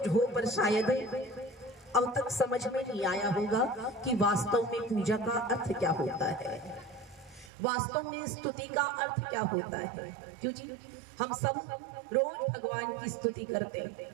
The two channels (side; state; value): left; drops out; at 7.5 s